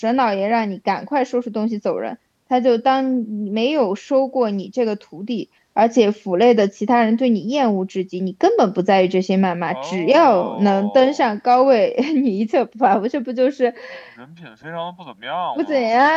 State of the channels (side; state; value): both; identical; correlation 1.00